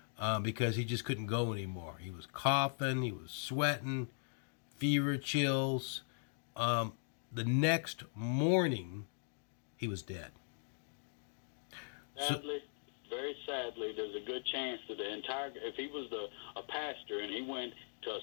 because he just couldn't go anymore. He was coughing, he was sweating, fever, chills. The next morning, he was dead. Sadly, very sadly, there's a good chance that if he was a pastor and he went to a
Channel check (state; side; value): silent; right; digital silence